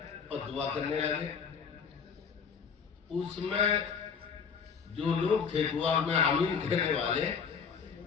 اور دعا کرنے لگے. اس میں جو لوگ تھے دعا میں آمین کہنے والے,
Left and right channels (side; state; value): right; quieter; 6.3 dB